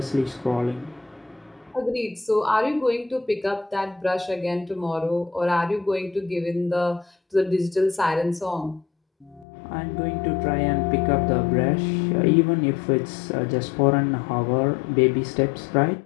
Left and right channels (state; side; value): drops out; right; at 9.5 s